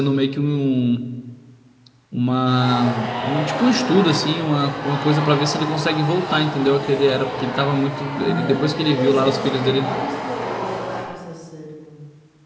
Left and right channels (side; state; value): both; identical; correlation 1.00